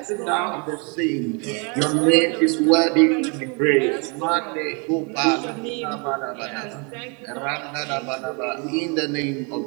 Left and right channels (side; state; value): left; quieter; 33.6 dB